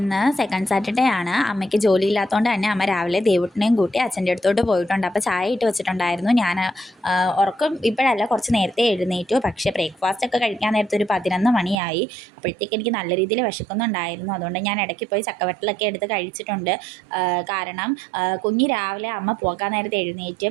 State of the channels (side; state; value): left; drops out; at 11.8 s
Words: second Saturday ആണ്. അമ്മയ്ക്ക് ജോലിയില്ലാത്തതുകൊണ്ട് തന്നെ അമ്മ രാവിലെ ദേവുട്ടിനെയും കൂട്ടി അച്ഛൻ്റെ അടുത്തോട്ട് പോയിട്ടുണ്ട്. അപ്പോൾ ചായ ഇട്ട് വെച്ചിട്ടുണ്ടായിരുന്നു. ഞാൻ ഉറക്കം ഇപ്പോഴല്ല, കുറച്ച് നേരത്തെ എഴുന്നേറ്റു. പക്ഷേ ബ്രേക്ക്ഫാസ്റ്റ് ഒക്കെ കഴിക്കാൻ നേരത്തെ ഒരു 11 മണിയായി. അപ്പോഴത്തേക്ക് എനിക്ക് നല്ല രീതിയിൽ വിശക്കുന്നുണ്ടായിരുന്നു. അതുകൊണ്ട് ഞാൻ ഇടയ്ക്ക് പോയി ചക്കവറ്റലൊക്കെ എടുത്ത് കഴിച്ചിട്ടുണ്ട്. കാരണം കുഞ്ഞ് രാവിലെ അമ്മ പോകാൻ നേരത്തെ എഴുന്നേറ്റ്